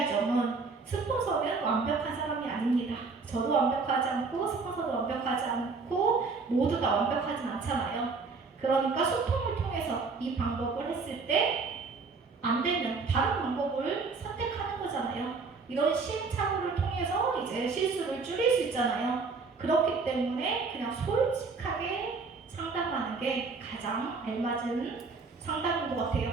점은 스폰서는 완벽한 사람이 아닙니다. 저도 완벽하지 않고 스폰서도 완벽하지 않고 모두가 완벽하진 않잖아요. 그러니까 소통을 통해서 이 방법을 했을 때 안 되면 다른 방법을 선택하는 거잖아요. 이런 시행착오를 통해서 이제 실수를 줄일 수 있잖아요. 그렇기 때문에 그냥 솔직하게 상담하는 게 가장 알맞은 상담인 것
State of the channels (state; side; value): quieter; left; 4.4 dB